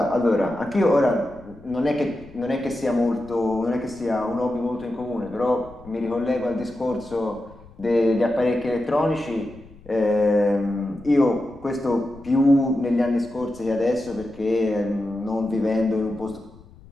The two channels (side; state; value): left; noise; rumble, 22 dB below the sound